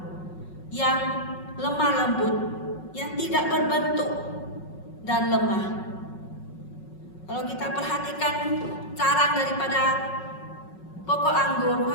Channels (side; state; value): right; late; 5.4 ms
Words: yang lemah lembut, yang tidak berbentuk dan lemah. Kalau kita perhatikan carang daripada pokok anggur,